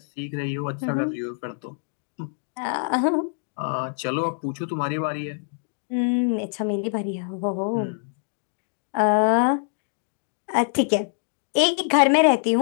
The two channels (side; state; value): right; silent; digital silence